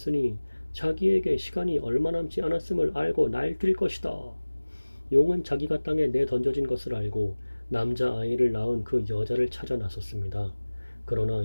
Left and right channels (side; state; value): both; inverted; correlation -1.00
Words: 자기에게 시간이 얼마 남지 않았음을 알고 날뛸 것이다. 용은 자기가 땅에 내던져진 것을 알고 남자아이를 낳은 그 여자를 찾아 나섰습니다.